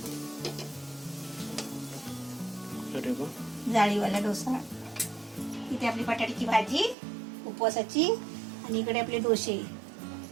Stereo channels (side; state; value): left; drops out; at 7.0 s